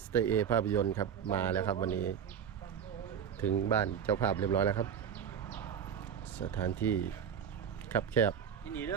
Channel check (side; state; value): left; quieter; 8.1 dB